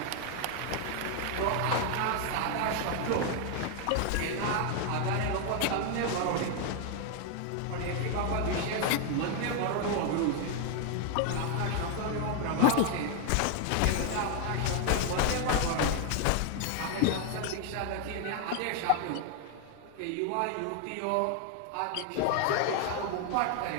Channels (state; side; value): different; both; correlation 0.00